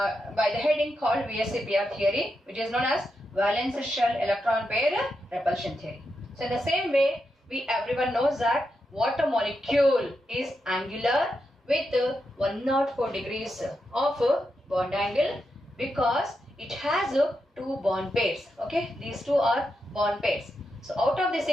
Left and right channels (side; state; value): both; normal; correlation 0.85